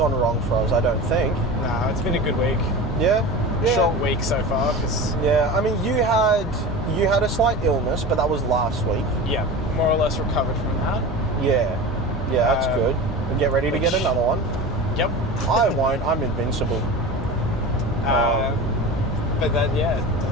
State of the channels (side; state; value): both; normal; correlation 0.31